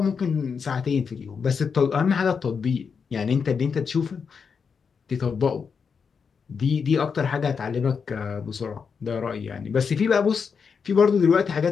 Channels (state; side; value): quieter; right; 6.0 dB